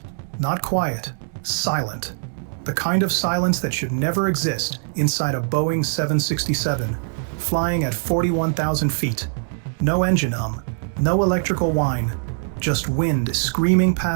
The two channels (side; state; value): left; silent; digital silence